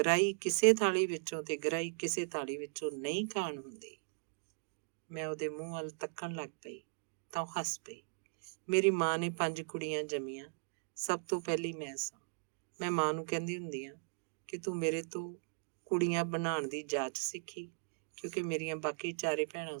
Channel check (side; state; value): left; silent; digital silence